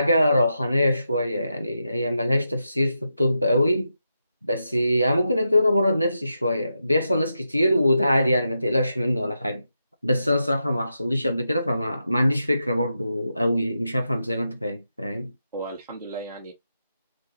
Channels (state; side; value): inverted; both; correlation -0.86